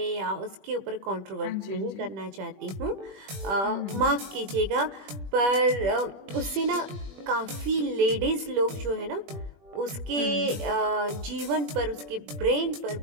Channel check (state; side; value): late; left; 21 ms